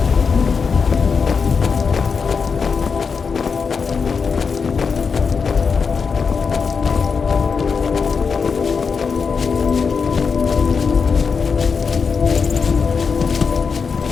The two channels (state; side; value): quieter; right; 5.5 dB